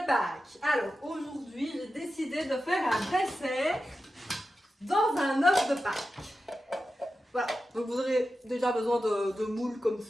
Pâques. Alors aujourd'hui j'ai décidé de faire un dessert dans un œuf de Pâques. Voilà, donc vous aurez déjà besoin de moules comme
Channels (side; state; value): both; normal; correlation 0.92